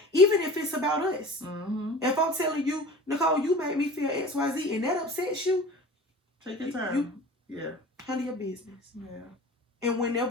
even if it's about us. If I'm telling you, Nicole, you made me feel XYZ and that upsets you, take your time. Handle your business. Yeah. And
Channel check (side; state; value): both; normal; correlation 0.39